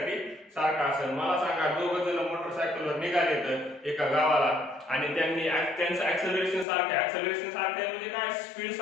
सारखा असेल. मला सांगा, दोघं जण मोटरसायकलवर निघाले तर एका गावाला आणि त्यांचं ऍक्सेलरेशन सारखं आहे. ऍक्सेलरेशन सारखं आहे म्हणजे काय, स्पीड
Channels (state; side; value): drops out; right; at 6.7 s